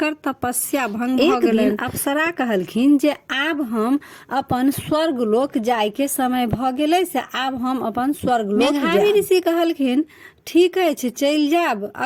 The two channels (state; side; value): identical; both; correlation 1.00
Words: तपस्या भंग भ गेलन। अप्सरा कहलखिन जे आब हम अपन स्वर्ग लोक जाय के समय भ गेलै, से आब हम अपन स्वर्ग लोक जायब। मेधावी ऋषि कहलखिन, ठीक अछि, चल जाब,